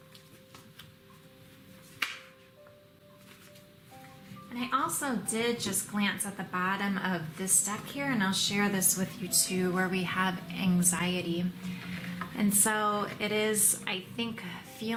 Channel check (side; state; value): both; identical; correlation 1.00